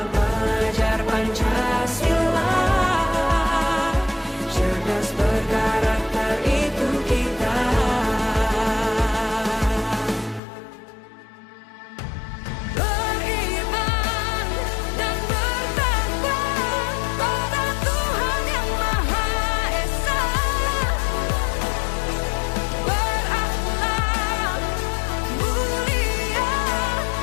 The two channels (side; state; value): right; drops out; at 10.4 s